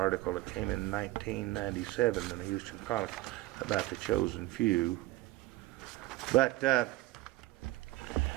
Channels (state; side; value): quieter; left; 18.0 dB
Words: that came in 1997 in the Houston Chronicle about the chosen few. But